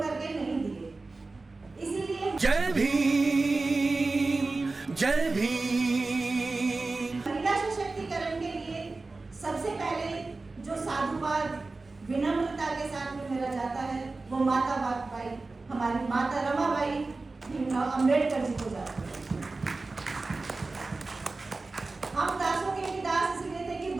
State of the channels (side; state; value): left; quieter; 3.6 dB